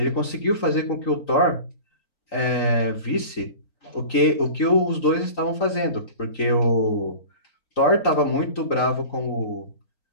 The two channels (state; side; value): late; right; 3.9 ms